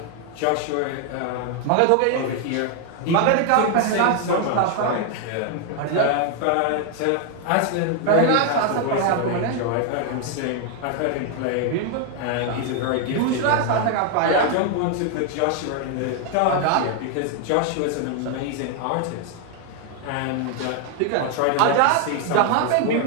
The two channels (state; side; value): different; both; correlation 0.00